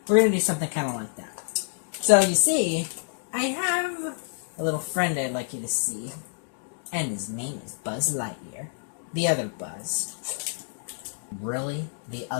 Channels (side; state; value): right; silent; 60 dB below the other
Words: we're going to do something kind of like that. So you see, I have a little friend I'd like you to see. And his name is Buzz Lightyear. The other Buzz. Really? The